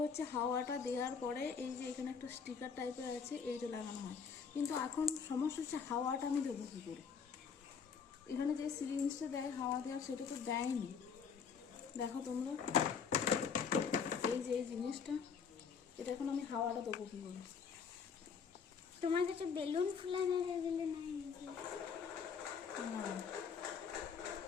হচ্ছে হাওয়াটা দেওয়ার পরে এই যে এখানে একটা স্টিকার টাইপের আছে, এইটা লাগানো হয়। কিন্তু এখন সমস্যা হচ্ছে হাওয়াটা আমি দেবো কী করে? এখানে যে সিরিঞ্জটা দেয় হাওয়া দেওয়ার, সেটা তো দেয়নি। দেখো তোমরা, এই যে এই জিনিসটা, এটা এখন আমি হাওয়াটা দেবো কী করে? তোমার কাছে বেলুন ফুলানোর এগুলো নাই নাকি? না,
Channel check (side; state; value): right; quieter; 6.3 dB